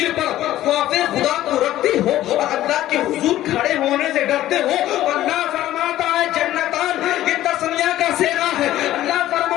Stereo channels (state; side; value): quieter; right; 14.0 dB